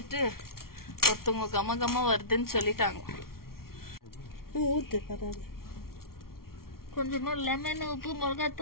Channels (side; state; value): right; late; 0.93 ms